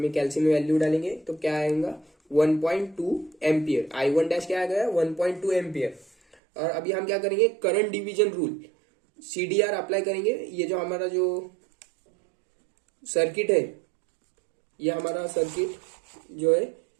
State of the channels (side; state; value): left; drops out; at 6.4 s